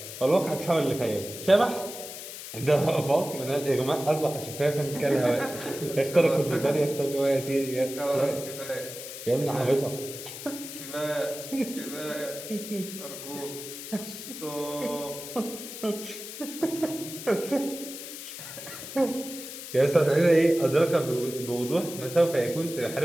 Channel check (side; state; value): left; noise; hiss, 10 dB below the sound